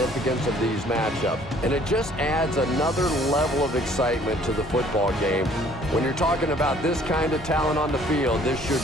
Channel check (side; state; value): both; normal; correlation 0.57